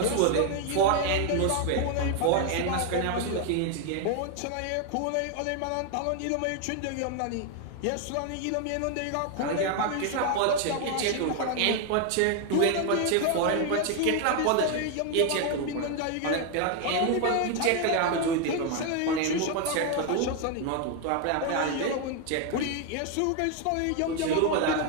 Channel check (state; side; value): different; both; correlation 0.01